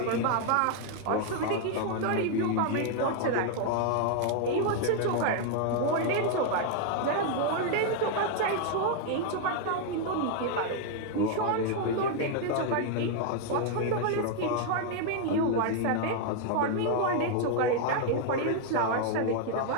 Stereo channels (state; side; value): different; both; correlation 0.00